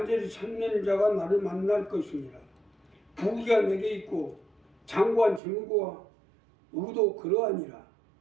찾는 자가 나를 만날 것이니라. 부귀가 내게 있고 장구한 재물과 의도 그러하니라.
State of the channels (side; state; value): left; drops out; at 5.4 s